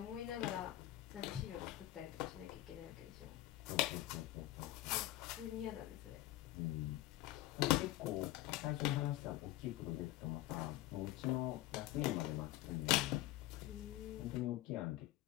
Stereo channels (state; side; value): quieter; right; 16.1 dB